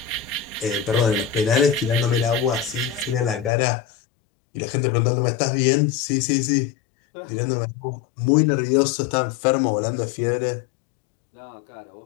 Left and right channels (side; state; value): right; drops out; at 3.5 s